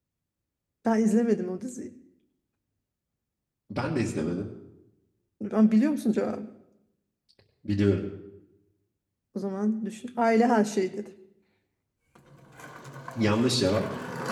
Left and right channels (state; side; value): identical; both; correlation 1.00